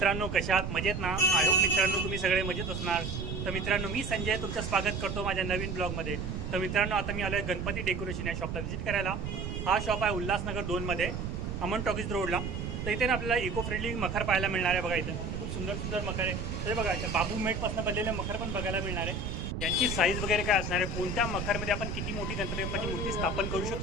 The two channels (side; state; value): right; noise; rumble, 4 dB below the sound